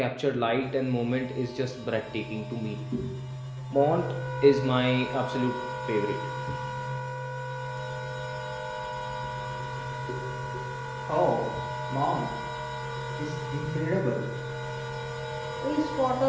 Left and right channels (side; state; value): both; identical; correlation 1.00